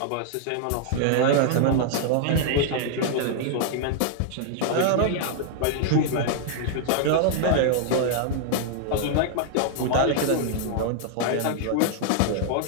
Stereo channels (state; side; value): different; both; correlation 0.00